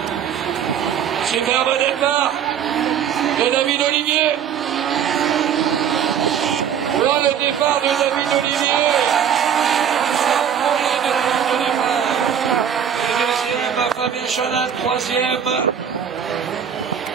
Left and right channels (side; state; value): left; quieter; 8.5 dB